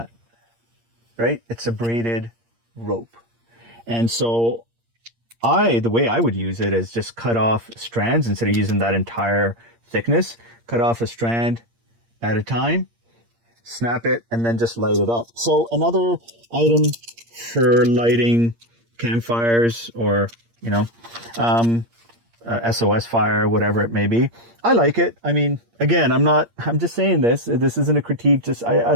right? It's a braided rope. And so the way I would use it is just cut off strands instead of using that entire thickness. Cut off a strand at a time, snap it, and then just light it up. So another item for lighting campfires, or, you know, SOS fire, whatever it may be. I like it. I mean, again, I'm just saying this isn't a critique. Just, I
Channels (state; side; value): late; left; 8.6 ms